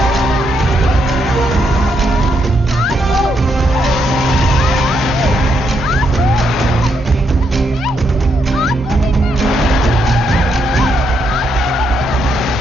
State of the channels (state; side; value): normal; both; correlation 0.77